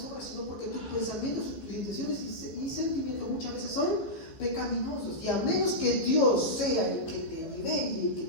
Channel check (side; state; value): right; late; 15 ms